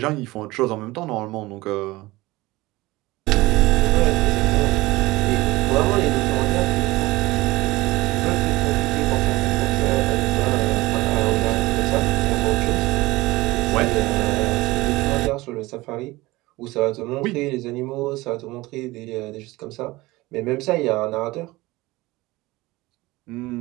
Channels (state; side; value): quieter; left; 20.1 dB